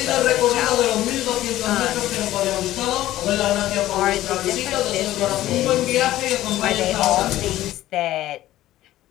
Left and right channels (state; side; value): quieter; right; 14.7 dB